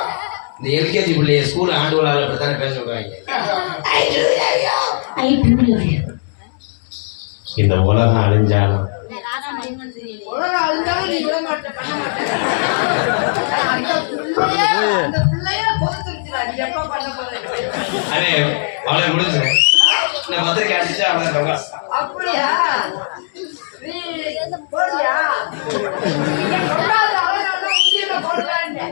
இந்த எல்கேஜி பிள்ளைய ஸ்கூல் ஆண்டு விழாவில் அப்படித்தானே பேச சொல்றாங்க. I do love you. இந்த உலகம் அழிஞ்சாலும் உலகம் அழிஞ்சாலும் நீ விட மாட்டேன், பண்ண மாட்டேன். அந்த பிள்ளைய கொடுத்துருச்சுடா, நீ எப்ப பண்ண போறேன்? அடே அவளை முடிஞ்சு இந்த பத்திரிக்கை அடிச்சா அவளை அப்படியா? நீ போடுறியா? நீங்க சொல்லாத அழகான உண்டியில போடுறாங்க.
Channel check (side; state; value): right; silent; digital silence